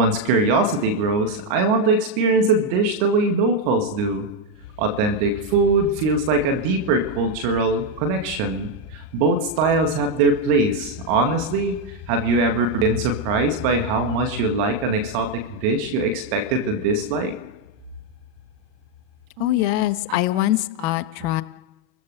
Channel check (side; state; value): left; late; 39 ms